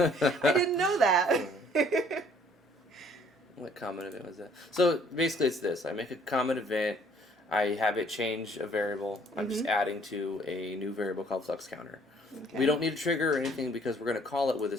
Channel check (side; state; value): both; normal; correlation 0.59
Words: didn't know that. What common event was that? So basically it's this. I make a common event. I have it change a variable. I'm just adding to a new variable called flux counter. Okay. We don't need a trigger or anything because we're going to call it with a